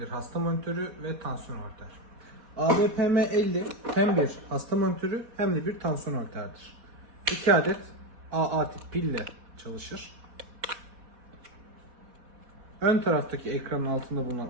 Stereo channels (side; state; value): left; late; 4.1 ms